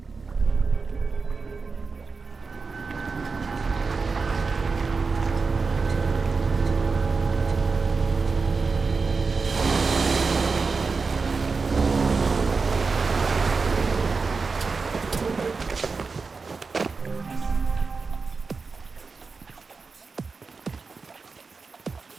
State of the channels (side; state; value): left; quieter; 4.5 dB